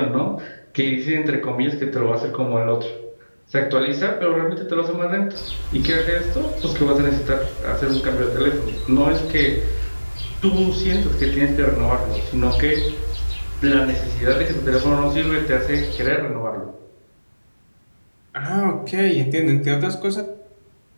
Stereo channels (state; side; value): inverted; both; correlation -1.00